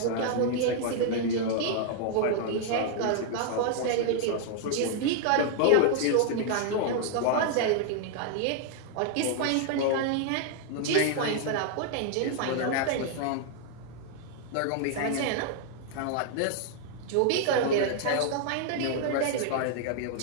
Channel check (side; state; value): both; different; correlation 0.00